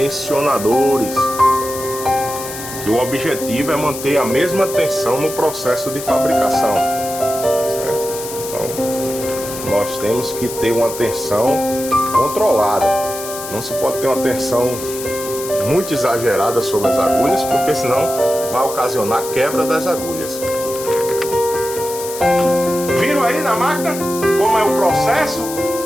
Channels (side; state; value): left; noise; hiss, 10 dB below the sound